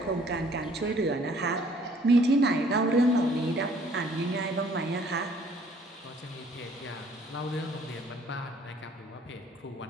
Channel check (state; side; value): normal; both; correlation 0.60